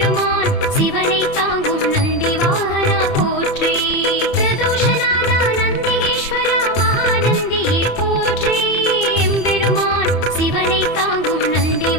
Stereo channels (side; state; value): right; late; 30 ms